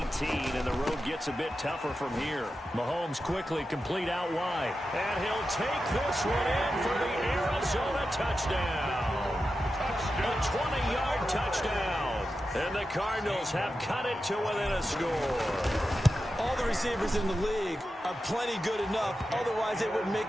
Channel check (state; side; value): normal; both; correlation 0.91